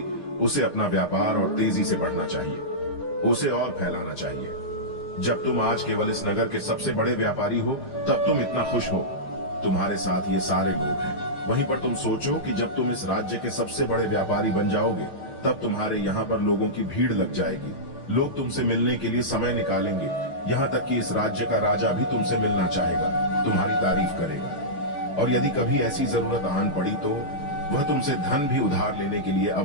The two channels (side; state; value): right; late; 6.6 ms